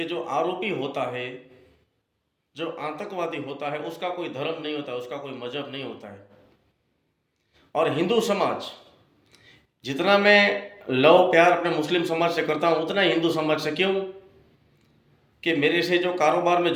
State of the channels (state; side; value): identical; both; correlation 1.00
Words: जो आरोपी होता है, जो आतंकवादी होता है, उसका कोई धर्म नहीं होता, उसका कोई मजहब नहीं होता है। और हिंदू समाज, जितना मैं लव प्यार अपने मुस्लिम समाज से करता हूँ, उतना ही हिंदू समाज से। क्यों? कि मेरे से जो कारोबार में